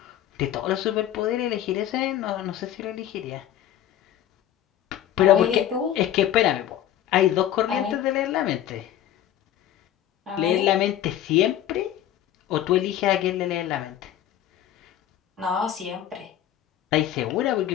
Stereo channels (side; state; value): right; quieter; 11.5 dB